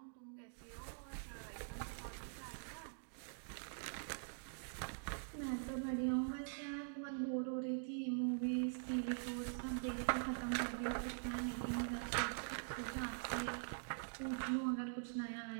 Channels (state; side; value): silent; left; digital silence